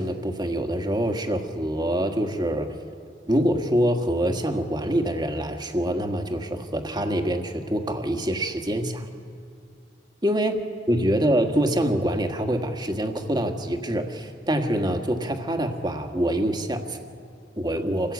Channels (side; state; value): both; normal; correlation 0.74